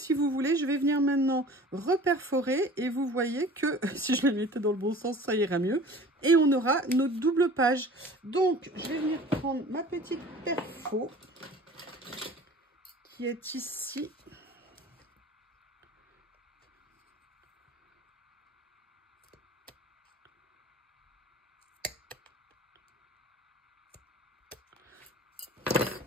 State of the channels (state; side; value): normal; both; correlation 0.44